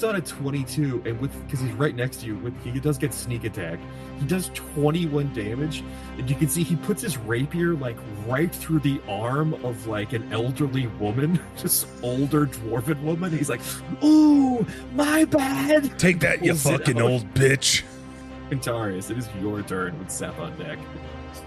on a 22, and because he's right next to you, he does get sneak attack. He does 21 damage, and you can see he puts his rapier right through the arm of an elderly woman, just older dwarven woman. He's like, "Ooh, my bad." Take that, you Pulls it fucking out. old bitch. Quintorius, it is your turn with Seth on deck.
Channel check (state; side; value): identical; both; correlation 1.00